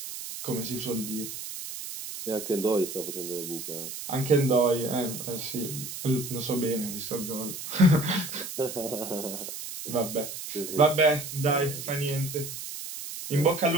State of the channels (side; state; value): right; noise; hiss, 8 dB below the sound